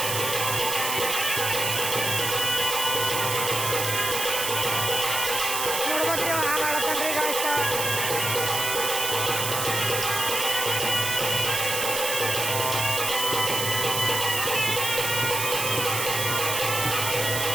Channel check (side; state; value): right; noise; hiss, 1 dB below the sound